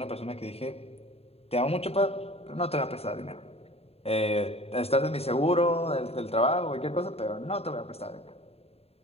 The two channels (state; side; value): late; right; 0.29 ms